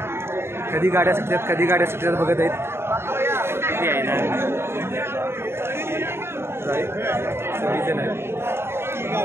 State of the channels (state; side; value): late; left; 0.12 ms